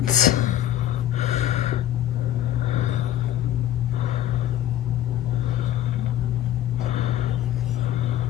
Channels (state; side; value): quieter; right; 12.0 dB